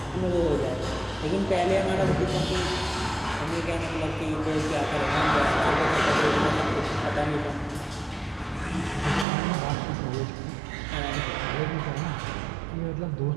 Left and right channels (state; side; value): drops out; left; at 9.2 s